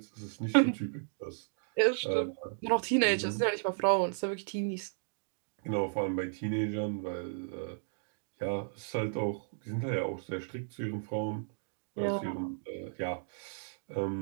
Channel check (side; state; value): left; silent; digital silence